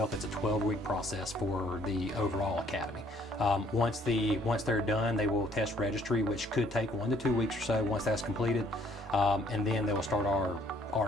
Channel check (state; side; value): normal; both; correlation 0.63